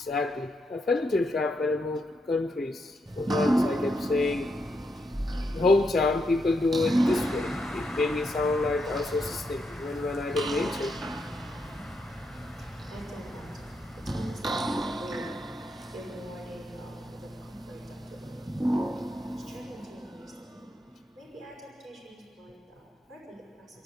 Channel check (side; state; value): both; normal; correlation 0.81